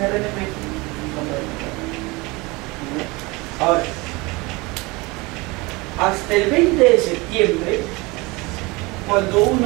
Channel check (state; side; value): quieter; left; 24.5 dB